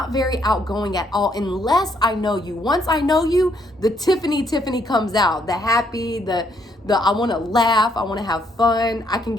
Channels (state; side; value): normal; both; correlation 0.71